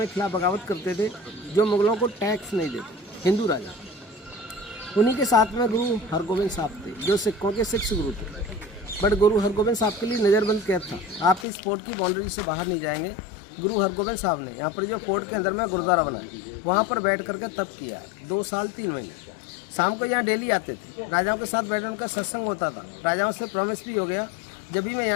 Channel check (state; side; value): drops out; right; at 11.5 s